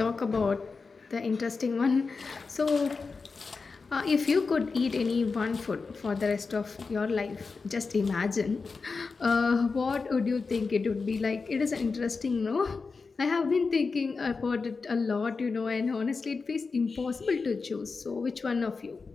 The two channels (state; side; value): quieter; right; 4.5 dB